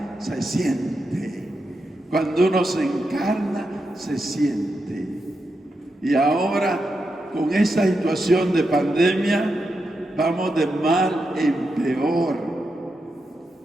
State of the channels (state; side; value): normal; both; correlation 0.86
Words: se siente. Cuando uno se encarna, se siente. Y ahora, con esa situación de pandemia, vamos de mal en peor.